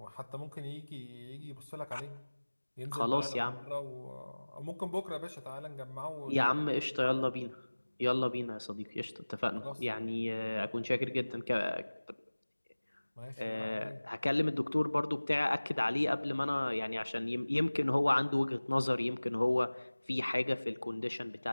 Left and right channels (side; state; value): both; inverted; correlation -1.00